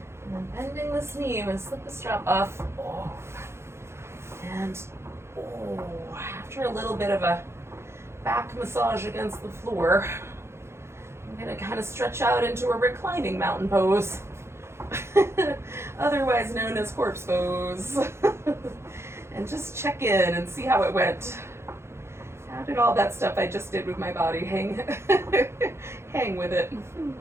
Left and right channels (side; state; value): left; late; 0.13 ms